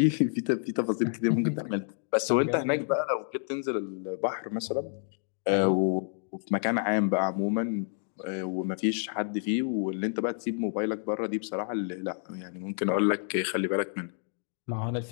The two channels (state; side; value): silent; right; 58 dB below the other